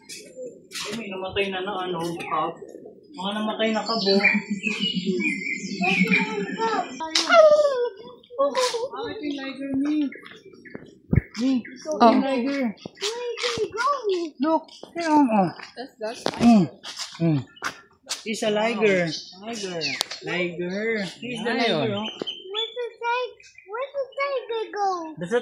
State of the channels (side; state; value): both; identical; correlation 1.00